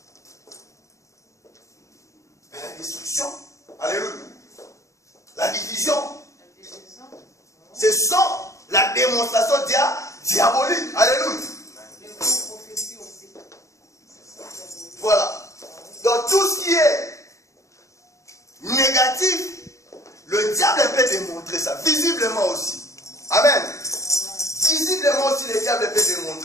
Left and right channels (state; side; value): late; right; 0.15 ms